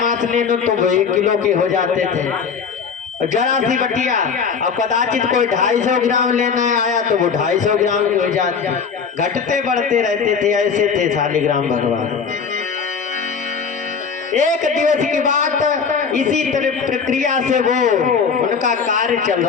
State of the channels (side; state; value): right; quieter; 6.0 dB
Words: मांस लेने तो वो 1 किलो के हो जाते थे। जरा सी बटिया और कदाचित कोई 250 ग्राम लेना आया तो वो 250 ग्राम हो जाते, घटते बढ़ते रहते थे। ऐसे थे शालिग्राम भगवान। एक दिवस की बात, इसी तरह प्रक्रिया से वो उनका कार्य चल